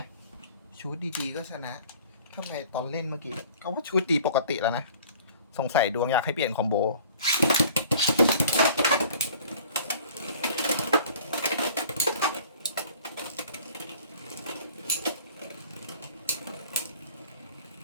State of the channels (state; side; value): inverted; both; correlation -0.49